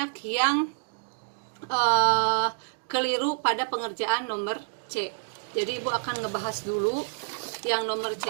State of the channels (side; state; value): left; silent; digital silence